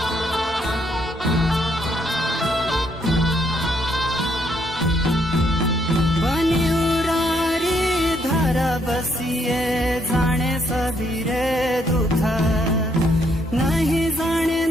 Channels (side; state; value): both; normal; correlation 0.72